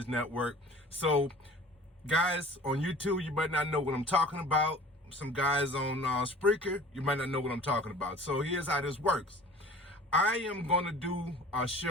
Network. So, guys on YouTube, you might not know what I'm talking about. Some guys on Spreaker, you might not know what I'm talking about. So here's how this works. I am gonna do a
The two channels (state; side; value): normal; both; correlation 0.45